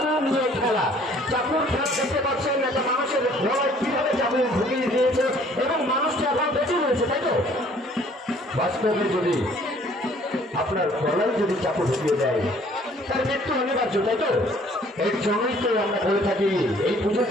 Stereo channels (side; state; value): both; normal; correlation 0.57